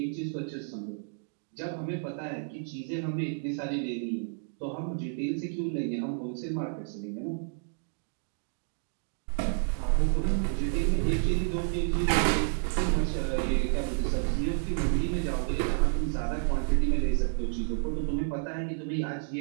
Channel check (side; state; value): left; silent; digital silence